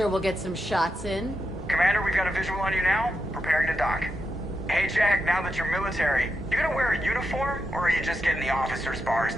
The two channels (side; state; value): both; normal; correlation 0.86